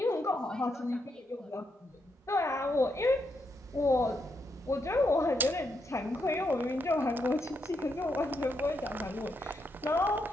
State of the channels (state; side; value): normal; both; correlation 0.80